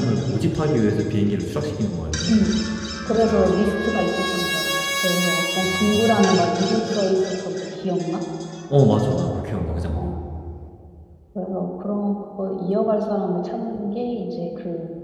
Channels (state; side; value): identical; both; correlation 1.00